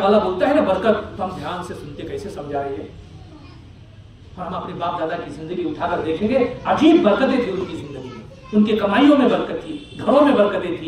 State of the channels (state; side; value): identical; both; correlation 1.00